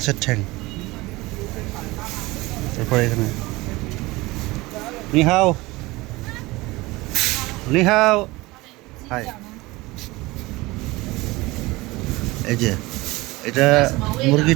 ঠ্যাং। তারপরে এখানে নিহাও নিহাও, হাই। এই যে এটা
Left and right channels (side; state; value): left; quieter; 21.2 dB